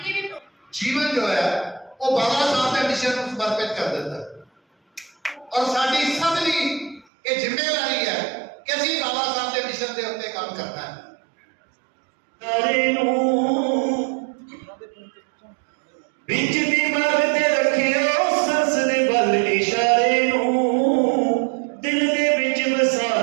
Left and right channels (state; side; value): drops out; left; at 7.1 s